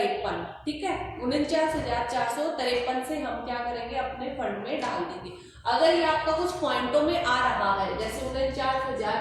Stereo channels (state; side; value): identical; both; correlation 1.00